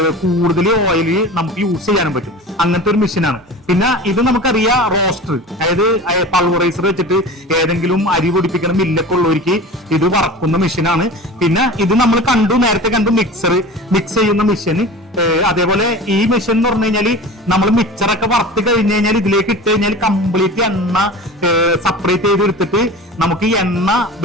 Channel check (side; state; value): both; normal; correlation 0.35